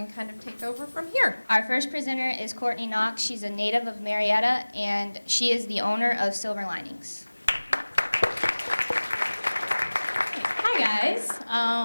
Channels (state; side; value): inverted; both; correlation -1.00